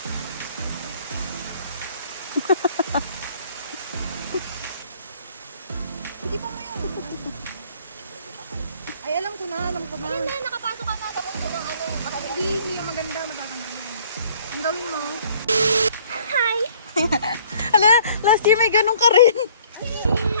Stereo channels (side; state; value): both; inverted; correlation -0.57